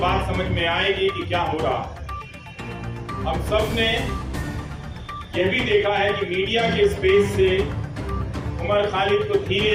समझ में आएगी कि क्या हो रहा। हम सब ने यह भी देखा है कि मीडिया के स्पेस से उमर खालिद को धीरे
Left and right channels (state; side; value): identical; both; correlation 1.00